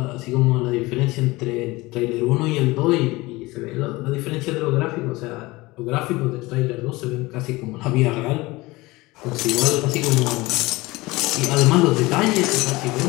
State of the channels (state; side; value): quieter; right; 21.4 dB